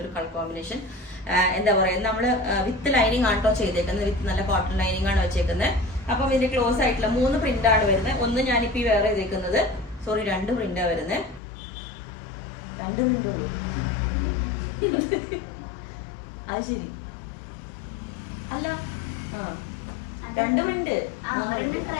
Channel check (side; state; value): right; drops out; at 11.4 s